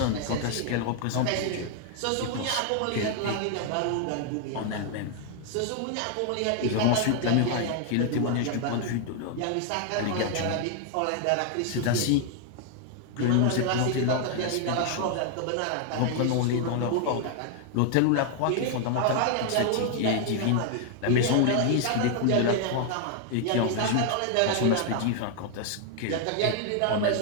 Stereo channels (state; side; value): different; both; correlation 0.00